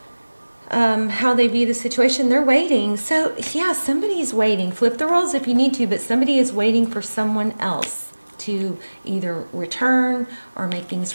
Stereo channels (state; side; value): inverted; both; correlation -1.00